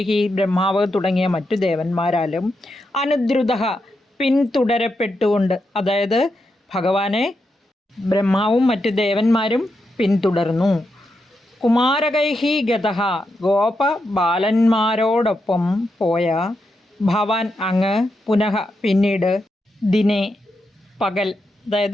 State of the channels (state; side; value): normal; both; correlation 0.85